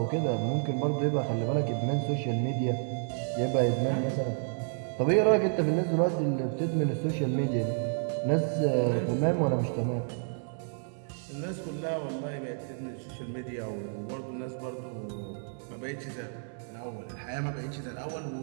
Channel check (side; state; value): left; silent; 57 dB below the other